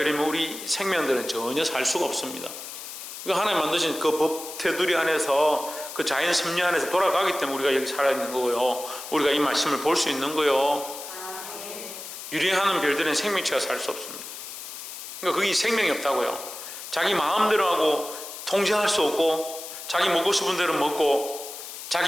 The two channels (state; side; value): noise; left; hiss, 11 dB below the sound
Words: 우리 생명들은 전혀 살 수가 없습니다. 하나님 만드신 그 법 테두리 안에서 그 자연 섭리 안에서 돌아가기 때문에 우리가 여기 살아있는 거고요. 우리가 이 말씀을 볼 수 있는 거요. 유리하는 별들은 생명체가 살 수 없습니다. 그러니까 거기 생명이 없다고요. 자기 마음대로 하고 통제할 수 없고 자기 먹고 싶은 대로 먹고